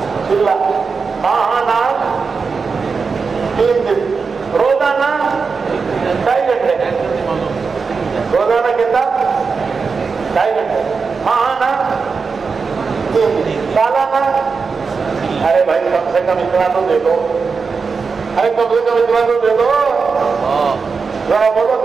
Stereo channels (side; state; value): left; quieter; 5.0 dB